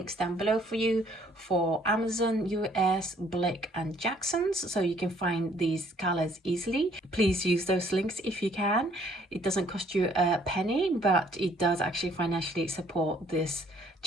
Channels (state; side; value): normal; both; correlation 0.62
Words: down below for you for Amazon, US, Blick and Jackson's, so you can find these colors easily. Please use those links if you can. It doesn't cost you a penny, but it does actually financially support this